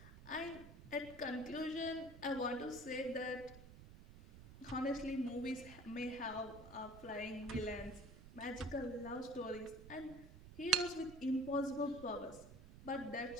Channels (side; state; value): right; noise; rumble, 16 dB below the sound